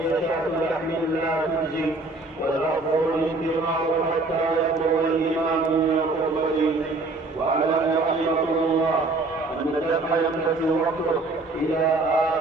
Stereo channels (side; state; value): left; quieter; 3.2 dB